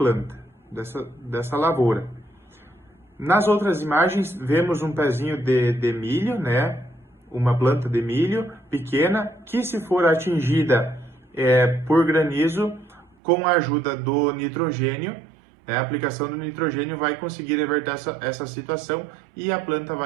dessa lavoura. Nas outras imagens, vemos um pezinho de milho, uma planta de milho pequena, que se for atingida por granizo, com a ajuda do nitrogênio, a aplicação do nitrogênio vai conseguir reverter essa situação e a planta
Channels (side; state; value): left; drops out; at 13.2 s